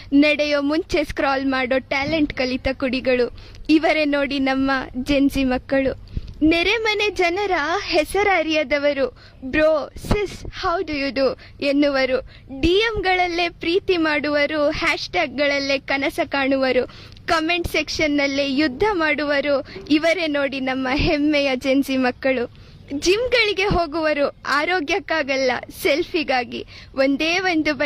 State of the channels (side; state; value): both; identical; correlation 1.00